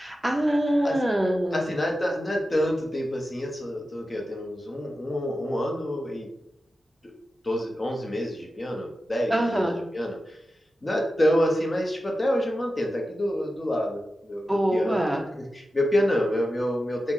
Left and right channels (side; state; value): both; normal; correlation 0.92